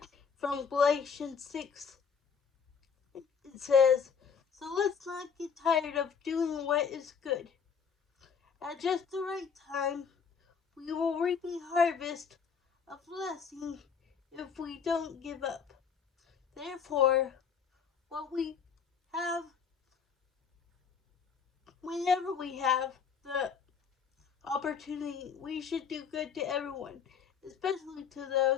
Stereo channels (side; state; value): right; quieter; 6.5 dB